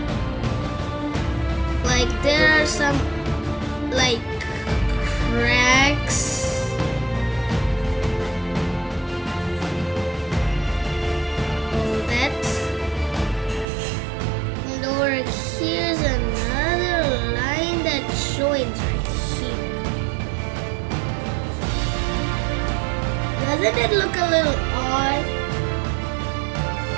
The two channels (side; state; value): left; drops out; at 13.7 s